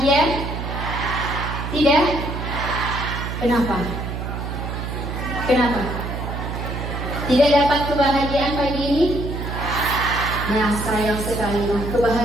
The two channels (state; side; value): noise; right; hum, 5 dB below the sound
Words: Tidak? Kenapa? Kenapa? Tidak dapat kebahagiaan pagi ini? Nah, sayang sekali. Nah,